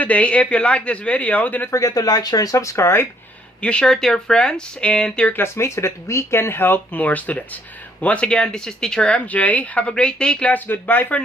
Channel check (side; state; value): both; normal; correlation 0.67